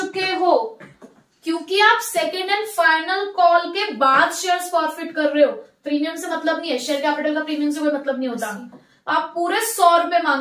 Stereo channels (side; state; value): both; identical; correlation 1.00